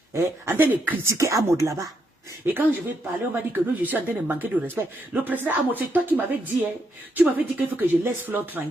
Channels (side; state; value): both; normal; correlation 0.78